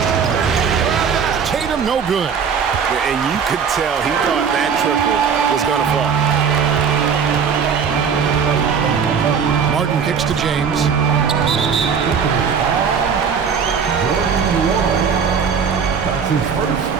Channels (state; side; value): quieter; left; 6.6 dB